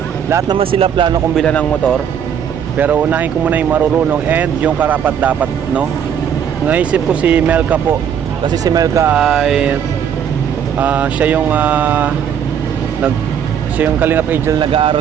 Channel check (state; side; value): quieter; left; 8.4 dB